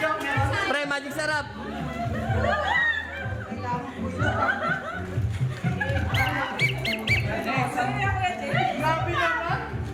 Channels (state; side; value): identical; both; correlation 1.00